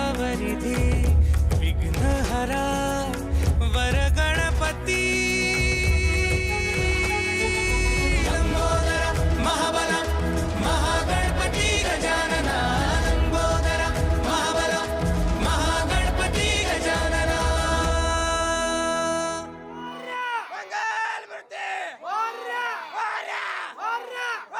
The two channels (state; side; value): identical; both; correlation 1.00